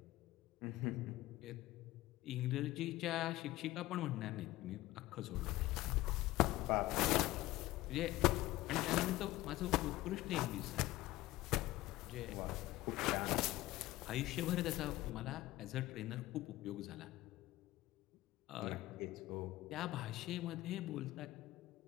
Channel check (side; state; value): right; quieter; 17.3 dB